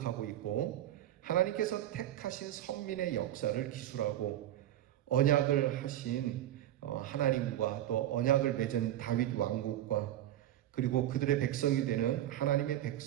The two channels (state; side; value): quieter; left; 12.7 dB